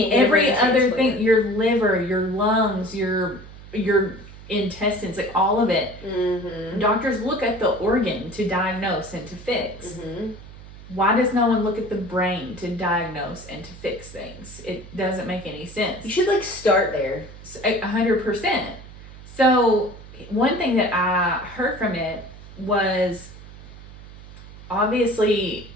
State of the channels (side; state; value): right; noise; hum, 17 dB below the sound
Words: every other thing, your liver, your lungs, your intestines, like all of it, doctors look at the organ to diagnose and to fix. Why does no one look at the brain to diagnose and to fix things? It doesn't make any sense. You should like start there. 100%. So one thing that I heard from it was obviously,